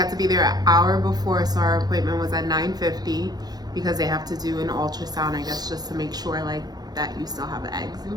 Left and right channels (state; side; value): late; left; 0.19 ms